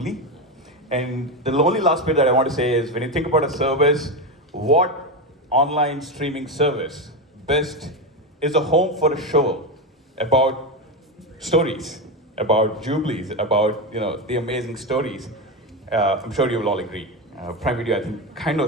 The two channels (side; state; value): both; normal; correlation 0.14